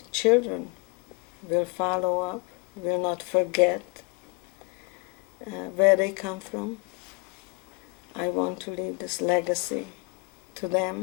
children will follow up, will not forget where they come from. I want to leave this legacy to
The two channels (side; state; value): right; quieter; 30.4 dB